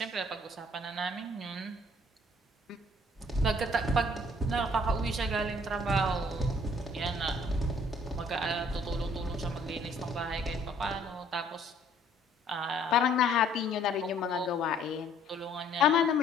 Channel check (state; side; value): normal; both; correlation 0.60